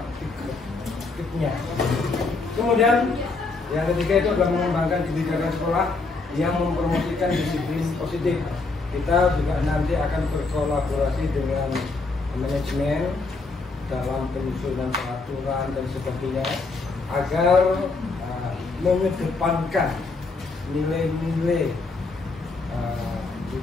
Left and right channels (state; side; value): quieter; right; 3.8 dB